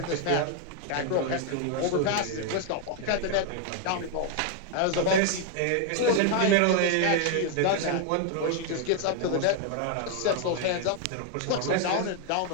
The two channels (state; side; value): different; both; correlation 0.00